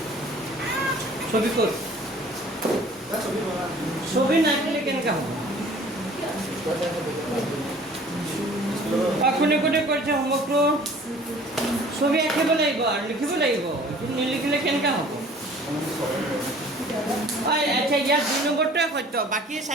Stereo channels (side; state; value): both; normal; correlation 0.50